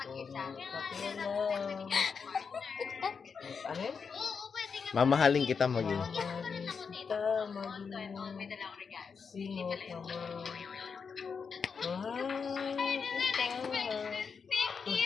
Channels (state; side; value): quieter; right; 5.8 dB